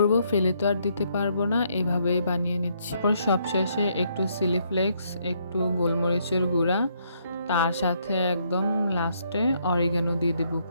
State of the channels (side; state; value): both; inverted; correlation -0.72